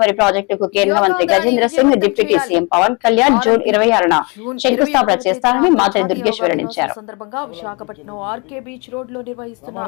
ప్రాజెక్టుకు కేంద్ర మంత్రి Gajendra Singh deputy CM Pawan Kalyan June 26న శంకుస్థాపన చేస్తారని మాత్రి దుర్గేష్ వెల్లడించారు. సందర్భంగా విశాఖపట్నం ఆర్కే బీచ్ రోడ్ లో నిర్వహిస్తున్న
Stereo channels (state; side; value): quieter; right; 30.1 dB